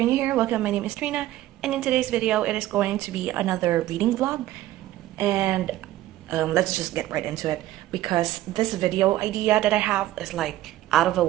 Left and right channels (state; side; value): quieter; left; 14.8 dB